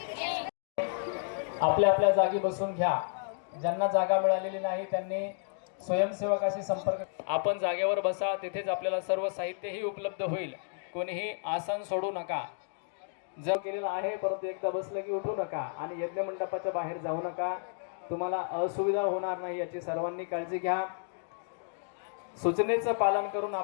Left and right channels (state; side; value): silent; right; digital silence